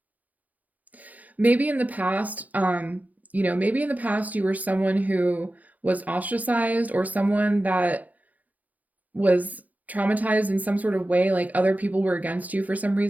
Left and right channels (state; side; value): late; left; 0.079 ms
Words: Maybe in the past, you know, maybe in the past you were someone who was ostracized, or someone that was traumatized in some sort of way, like other people were against you for some